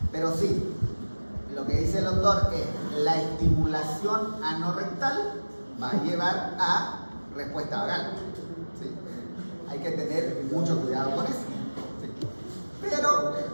Pero sí, lo que dice el doctor es la estimulación anorrectal va a llevar a respuesta vagal. ¿Sí? Hay que tener mucho cuidado con eso. ¿Sí? Pero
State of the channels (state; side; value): inverted; both; correlation -1.00